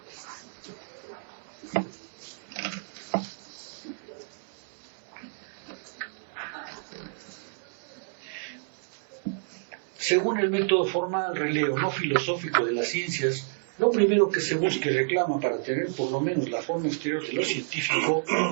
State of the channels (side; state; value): left; silent; 58 dB below the other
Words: Según el método formal, releo, no filosófico de las ciencias, lo primero que se busca y reclama para tener por lo menos la forma exterior de lo científico